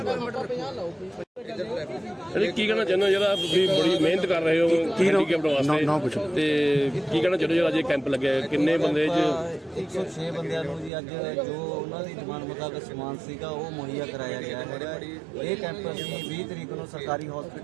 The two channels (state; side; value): drops out; left; at 10.9 s